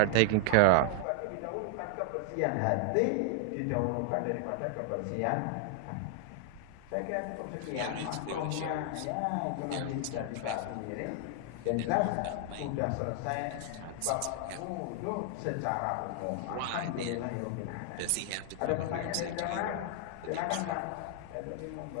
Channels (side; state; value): both; different; correlation 0.00